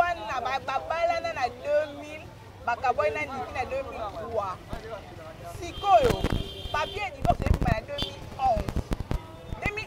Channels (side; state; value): both; identical; correlation 1.00